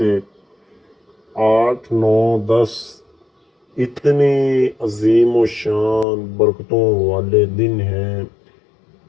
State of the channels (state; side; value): drops out; right; at 6.1 s